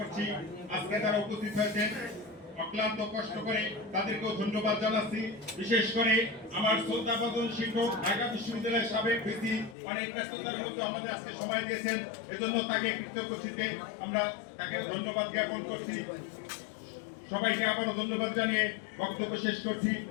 আজকে তারা উপস্থিত হয়েছেন অক্লান্ত কষ্ট করে, তাদেরকেও ধন্যবাদ জানাচ্ছি। বিশেষ করে আমার শ্রদ্ধাভাজন শিক্ষক ঢাকা বিশ্ববিদ্যালয়ের সাবেক ভিসি অনেক ব্যস্ততার মধ্যে আমাদের আজকে সময় দিয়েছেন, এজন্য তাকে কৃতজ্ঞচিত্তে আমরা তাকে ধন্যবাদ জ্ঞাপন করছি। সবাইকে আবারও ধন্যবাদ জানিয়ে বক্তব্য শেষ করছি।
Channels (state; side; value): drops out; right; at 9.8 s